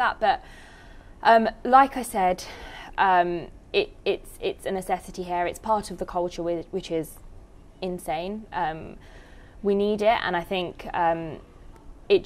But like I said, it's a necessity here. It's part of the culture, which is insane. We need it, and I think it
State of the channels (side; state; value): both; identical; correlation 1.00